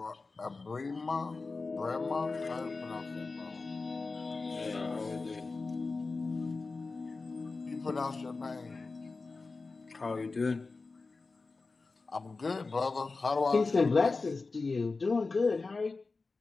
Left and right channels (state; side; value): quieter; right; 3.9 dB